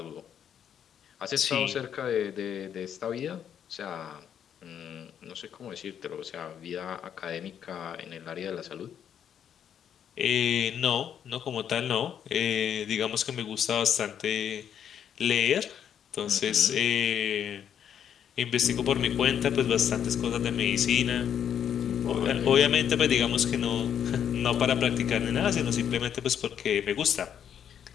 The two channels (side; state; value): right; quieter; 8.9 dB